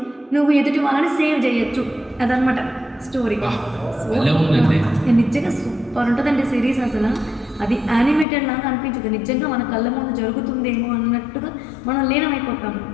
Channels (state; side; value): drops out; right; at 8.2 s